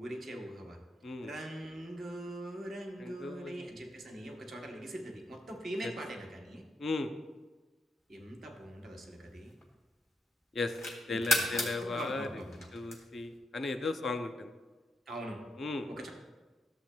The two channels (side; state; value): both; normal; correlation 0.82